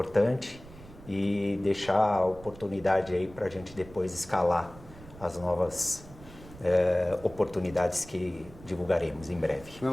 E deixar a oportunidade aí para a gente depois escalar as novas oportunidades que divulgaremos em breve.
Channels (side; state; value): right; noise; rumble, 19 dB below the sound